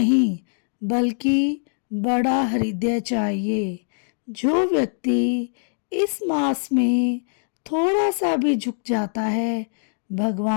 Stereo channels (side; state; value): right; silent; 63 dB below the other